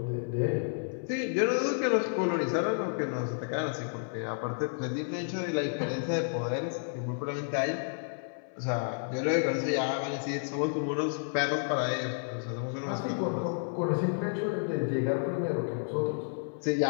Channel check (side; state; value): right; silent; 57 dB below the other